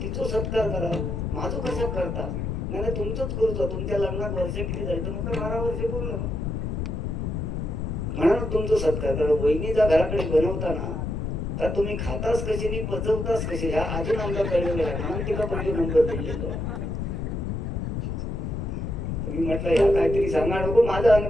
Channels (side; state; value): left; noise; rumble, 2 dB below the sound